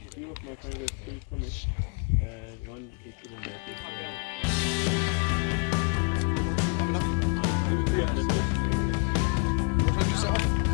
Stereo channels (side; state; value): right; quieter; 36.4 dB